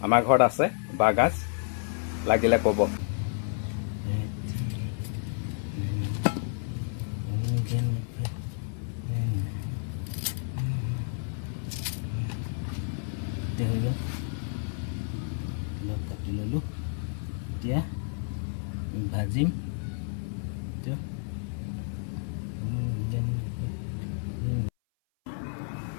আমাৰ ঘৰত আছে বাঁহগাজ, লাগিলে ক'ব। কাটি ললোঁ, এতিয়া ভাজিম।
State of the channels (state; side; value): silent; right; 56 dB below the other